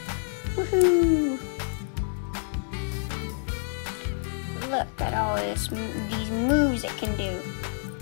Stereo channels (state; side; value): silent; right; digital silence